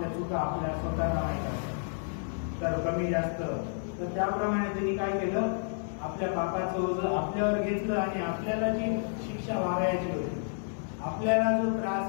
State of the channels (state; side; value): silent; right; 57 dB below the other